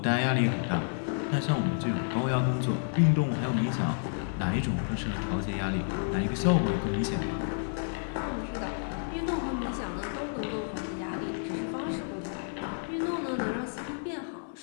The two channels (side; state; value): right; silent; 58 dB below the other